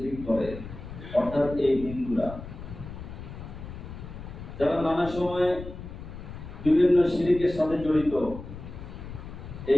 করে, অর্থাৎ এই হিন্দুরা, যারা নানা সময়ে বিভিন্ন শিরকের সাথে জড়িত।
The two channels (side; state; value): left; noise; rumble, 11 dB below the sound